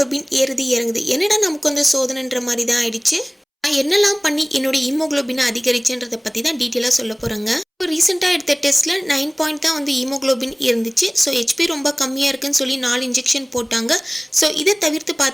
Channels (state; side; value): identical; both; correlation 1.00